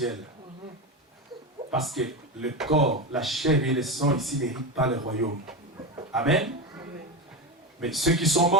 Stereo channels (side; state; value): both; normal; correlation 0.18